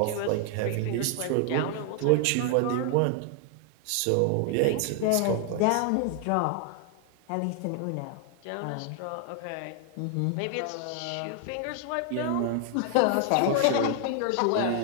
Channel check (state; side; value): different; both; correlation 0.00